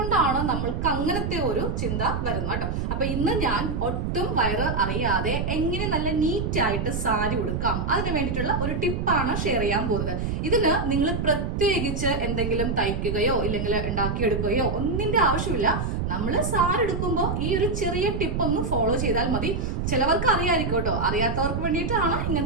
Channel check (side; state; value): right; noise; rumble, 1 dB below the sound